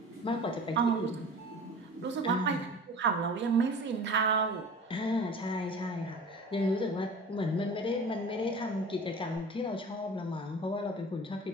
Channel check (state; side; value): normal; both; correlation 0.40